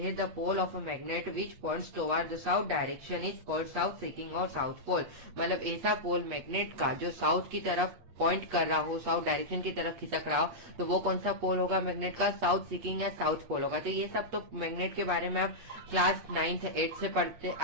the pole of a magnet which points toward the south direction is called south seeking और साउथ पोल। मतलब ऐसा पोल मैग्नेट का जो साउथ की तरफ पॉइंट कर रहा हो, साउथ डायरेक्शन की तरफ खिसक रहा हो, तो वो कौन सा पोल होगा मैग्नेट का, साउथ सीकिंग या साउथ पोल होगा। तो ये सब तो मैग्नेट के बारे में आप क्लास 9th 8th से पढ़ते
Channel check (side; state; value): left; late; 8.2 ms